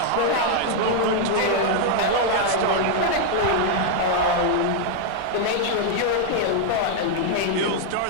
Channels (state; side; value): different; both; correlation 0.00